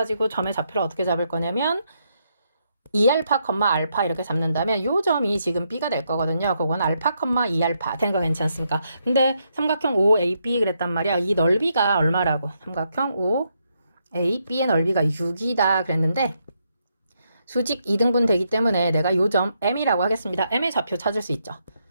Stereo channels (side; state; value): both; inverted; correlation -0.79